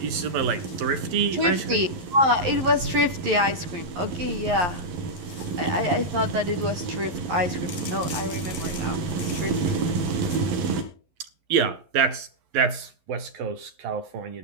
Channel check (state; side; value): late; left; 11 ms